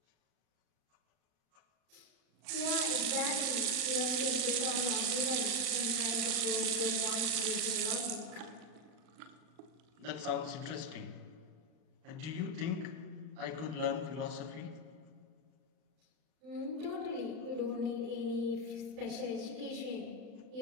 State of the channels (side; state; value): left; late; 39 ms